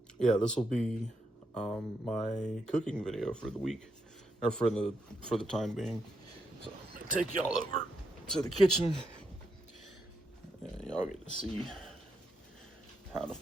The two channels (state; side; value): normal; both; correlation 0.81